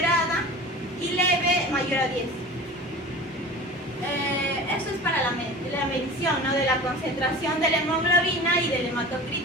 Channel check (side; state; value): both; normal; correlation 0.37